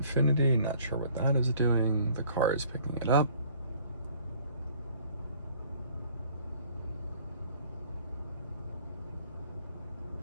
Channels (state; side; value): inverted; both; correlation -0.56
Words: Not sure what that is doing. The car is picking it up.